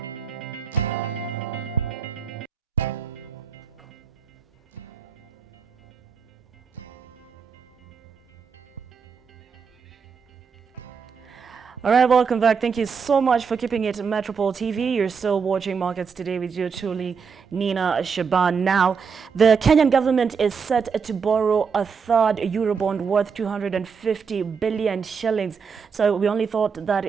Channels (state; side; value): quieter; left; 5.9 dB